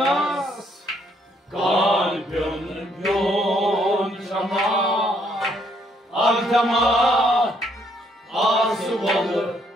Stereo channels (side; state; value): both; normal; correlation 0.69